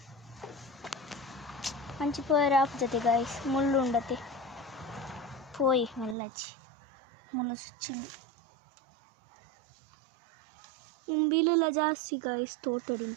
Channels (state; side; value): drops out; left; at 6.2 s